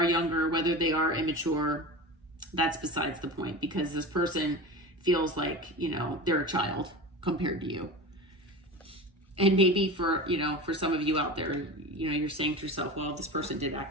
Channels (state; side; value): normal; both; correlation 0.30